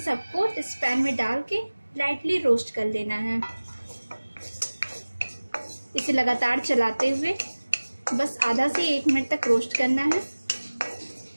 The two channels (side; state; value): both; inverted; correlation -1.00